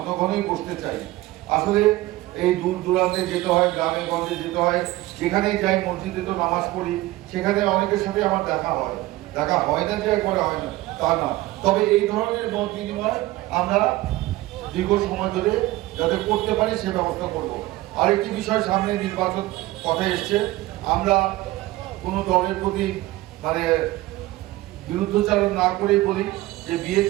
ঘনই বসতে চাই। আসলে এই দূর দূরান্তে যেতে হয়, গ্রামে গঞ্জে যেতে হয়, যেখানেই যাই, মসজিদে তো নামাজ পড়ি, সেখানে অনেকের সাথে আমার দেখা হয় না যে একবারে হয় না তা না, তবে এই ধরনের মত বিনিময় আমরা দীর্ঘ সময় ধরে যাতে করতে পারি সে ব্যবস্থা করব। আরেকটি বিষয়, সামনে নির্বাচন কথা এসছে, আমরা কোনো দলের প্রতি মানে বিরুদ্ধচারণ না করেই বলি যে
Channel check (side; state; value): left; quieter; 17.7 dB